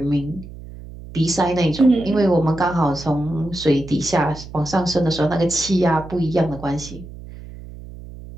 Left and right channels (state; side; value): noise; right; hum, 15 dB below the sound